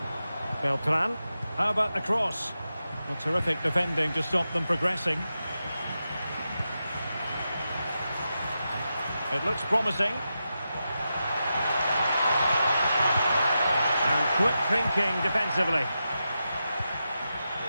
Beltran. How about the cross? Well, terrific defending to stop them progressing. It looks promising. And quick thinking defensively.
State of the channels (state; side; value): inverted; both; correlation -0.89